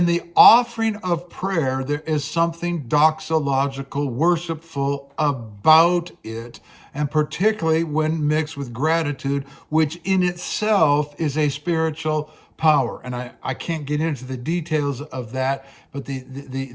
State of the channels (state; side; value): identical; both; correlation 1.00